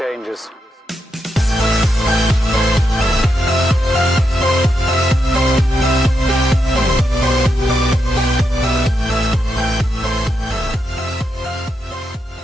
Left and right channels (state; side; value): normal; both; correlation 0.84